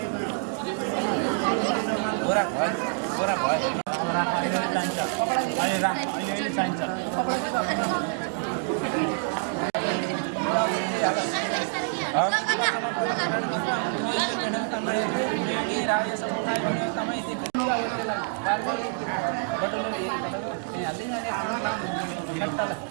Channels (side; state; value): left; silent; 60 dB below the other